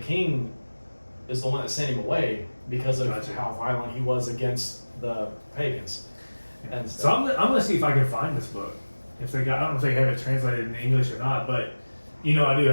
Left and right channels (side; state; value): both; inverted; correlation -1.00